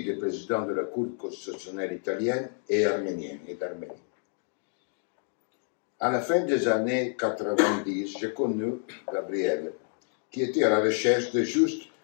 des présidents de la Cour constitutionnelle italienne et arménienne et d'Arménie. À la fin des années 90, j'ai connu Gabriel, qui était à la recherche de juste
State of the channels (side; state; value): right; silent; 59 dB below the other